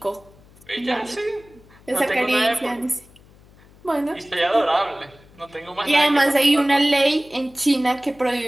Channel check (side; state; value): left; noise; hum, 26 dB below the sound